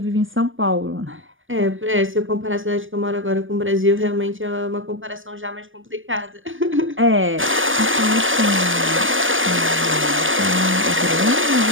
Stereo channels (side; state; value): left; late; 0.58 ms